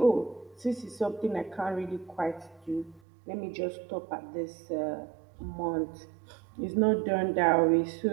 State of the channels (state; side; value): drops out; left; at 3.0 s